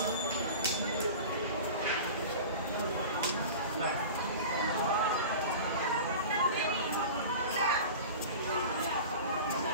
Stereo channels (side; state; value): both; inverted; correlation -0.34